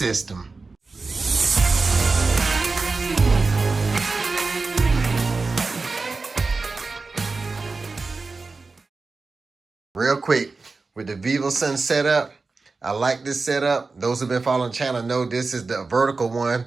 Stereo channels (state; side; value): quieter; left; 4.0 dB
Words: Real quick, with the VivoSun setup, I like this setup. Those who've been following the channel know this is the vertical one,